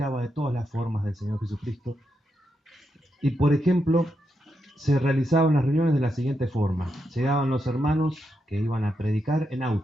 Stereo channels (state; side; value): normal; both; correlation 0.84